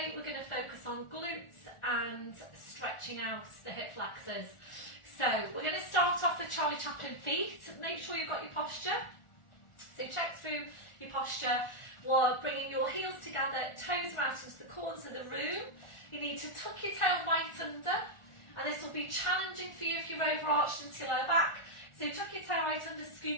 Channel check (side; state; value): right; late; 1.4 ms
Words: we're going to focus on glutes and stretching out the hip flexors. So we're going to start off with Charlie Chaplin feet. Make sure you've got your posture. So check through your posture while bringing your heels together, toes out into the corners of the room. You need to tuck your tail right under, and this will be challenging for you if you're overarched into your lower back. So tuck your tail right under,